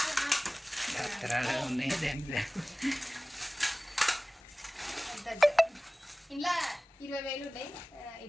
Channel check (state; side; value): normal; both; correlation 0.98